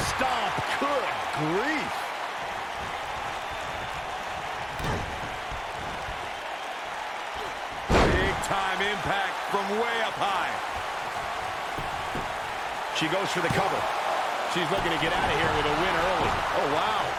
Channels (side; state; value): both; identical; correlation 1.00